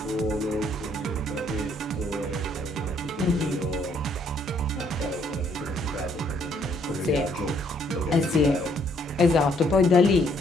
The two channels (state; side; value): normal; both; correlation 0.67